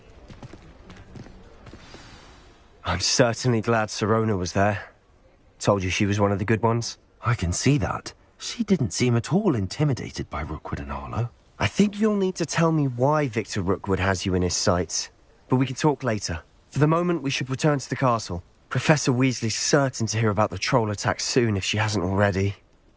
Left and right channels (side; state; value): both; identical; correlation 1.00